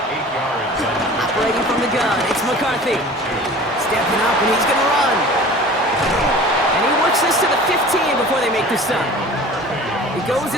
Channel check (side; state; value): both; normal; correlation 0.42